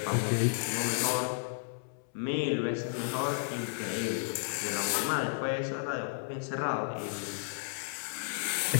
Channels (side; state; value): right; silent; 56 dB below the other